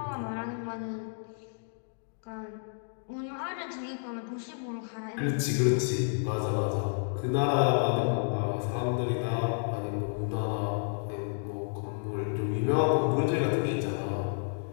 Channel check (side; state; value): right; silent; digital silence